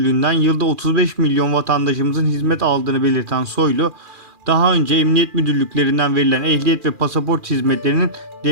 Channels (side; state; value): left; late; 2.4 ms